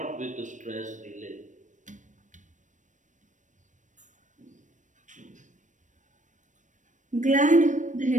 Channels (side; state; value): left; late; 0.36 ms